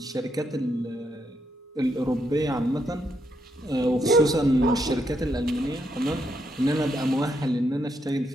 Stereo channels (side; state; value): both; normal; correlation 0.78